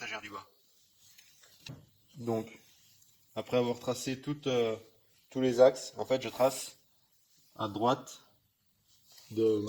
du bas. Donc, après avoir tracé tous les axes, en fait, je trace à droite de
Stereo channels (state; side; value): identical; both; correlation 1.00